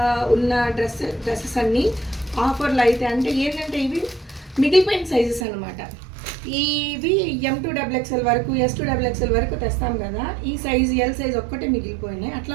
ఉన్న డ్రెస్సెస్ అన్నీ ఆఫర్లు అయితే. అంటే ఏంటంటే ఇవి మిగిలిపోయిన సైజెస్ అనమాట. ఇవి M2XXL వరకు, S2XXL వరకు తెస్తాం కదా, ఈ సైజ్ ఎల్ సైజ్ ఒక్కటే మిగిలిపోయినాయి.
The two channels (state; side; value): drops out; left; at 5.5 s